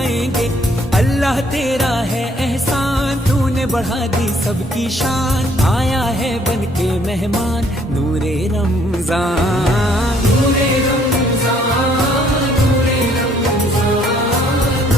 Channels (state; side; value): normal; both; correlation 0.64